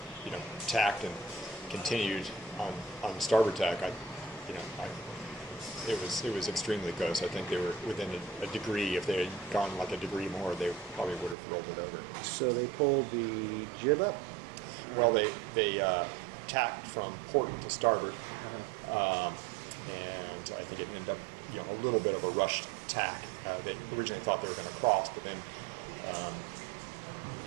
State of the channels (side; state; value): left; drops out; at 11.4 s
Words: tacked and continued on starboard tack, it was extremely close. I think they were within a degree. If they had gone like a degree more, they probably would have rolled it over. So they pulled the jib up? Well, they tacked from port to starboard, and I think it ended up a little bit of a rushed tack. They originally thought they were going to cross, but then